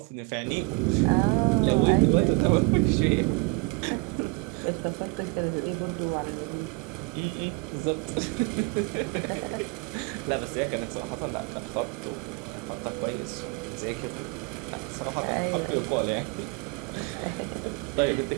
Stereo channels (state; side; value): quieter; left; 27.4 dB